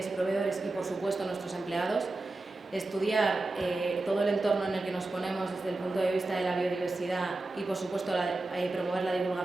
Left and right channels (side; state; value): left; quieter; 3.0 dB